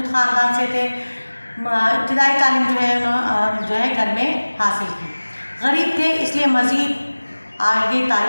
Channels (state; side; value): inverted; both; correlation -1.00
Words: ख़ानदान से थे। इब्तिदाई तालीम जो है घर में हासिल की। गरीब थे इसलिए मज़ीद आगे